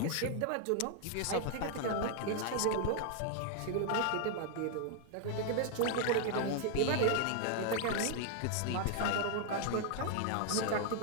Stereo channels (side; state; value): both; different; correlation 0.00